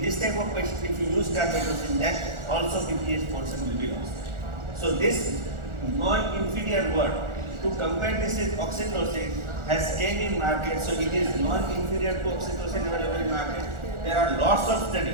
this type of patients, if you use carbetocin, then also PPH portion will be lost. So this non-inferior word, to compare this with oxytocin, has came in market. So it is non-inferior to oxytocin available in market. There are lots of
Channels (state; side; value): late; left; 1.4 ms